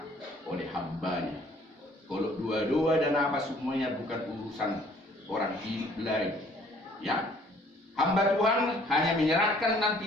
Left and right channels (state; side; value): normal; both; correlation 0.58